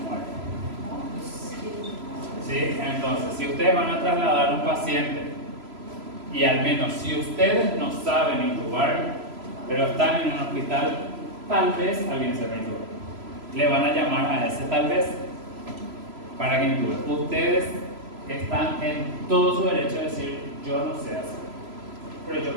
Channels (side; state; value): left; late; 3.0 ms